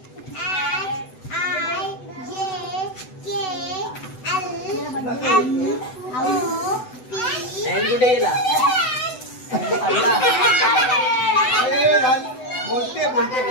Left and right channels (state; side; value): late; right; 7.9 ms